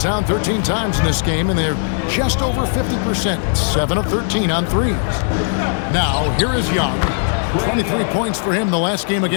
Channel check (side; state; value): right; silent; 67 dB below the other